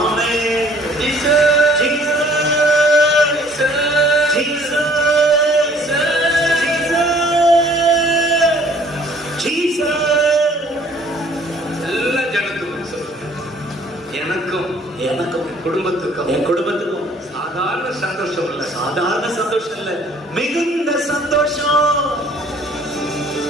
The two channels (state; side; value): normal; both; correlation 0.56